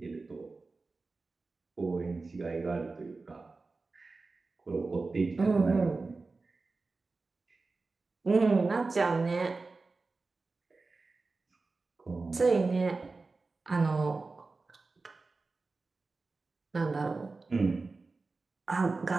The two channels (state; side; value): quieter; left; 3.8 dB